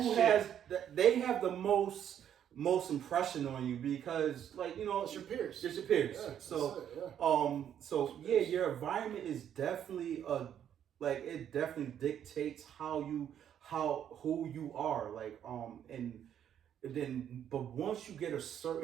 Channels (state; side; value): quieter; left; 9.6 dB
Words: they have the most impression on you because, like, you know, it's your peers. It's your peers. Yeah, your environment is definitely it definitely dictates who you are. Like and then, but once you get a